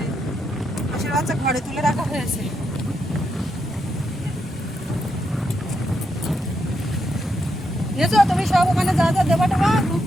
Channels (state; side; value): normal; both; correlation 0.81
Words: হাঁসের বাচ্চা ঘরে তুলে রাখা হয়েছে। বুঝেছো, তুমি সব ওখানে যা যা দেবা টেবা, দুধ